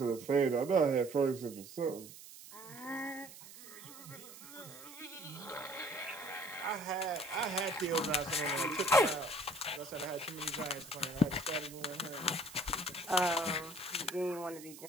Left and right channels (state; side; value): noise; right; hiss, 16 dB below the sound